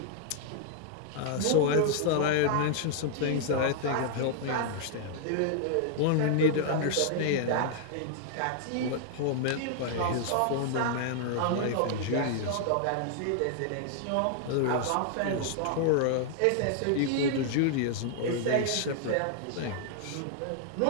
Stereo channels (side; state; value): both; different; correlation -0.01